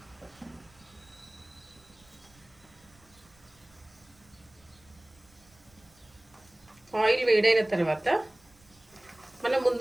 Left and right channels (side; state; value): right; noise; rumble, 29 dB below the sound